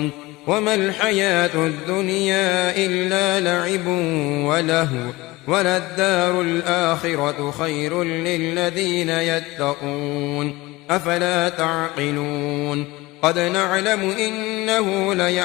وما الحياة الدنيا إلا لعب ولهو وللدار الآخرة خير للذين يتقون أفلا تعقلون. قد نعلم إنه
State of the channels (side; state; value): right; quieter; 20.7 dB